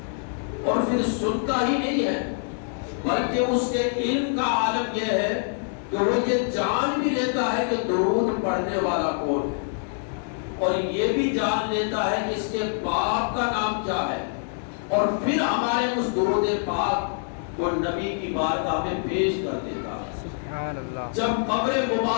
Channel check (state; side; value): silent; right; 62 dB below the other